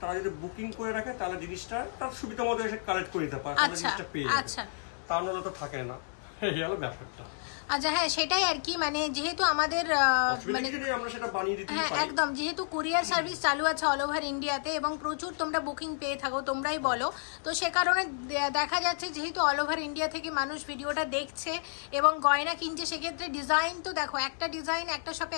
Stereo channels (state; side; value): silent; right; 57 dB below the other